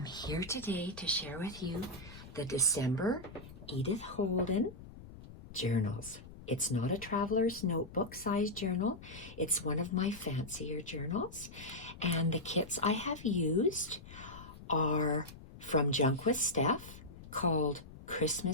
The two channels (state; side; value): noise; left; rumble, 16 dB below the sound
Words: here today to share with you the December Edith Holden journals. It's not a traveler's notebook size journal. It's one of my fancier journals. And the kits I have used are from Junk With Steph, called